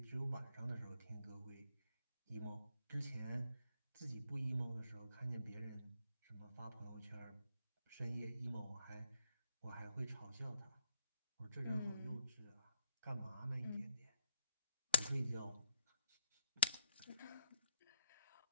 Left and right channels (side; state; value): both; inverted; correlation -0.74